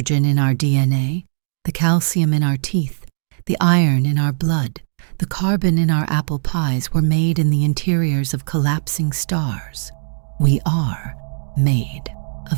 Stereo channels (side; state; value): left; silent; digital silence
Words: in our DNA, the calcium in our teeth, the iron in our blood, the carbon in our apple pies were made in the interiors of collapsing stars. We are made